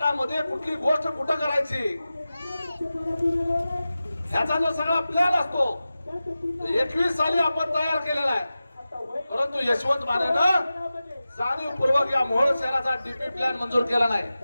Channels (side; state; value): both; inverted; correlation -0.95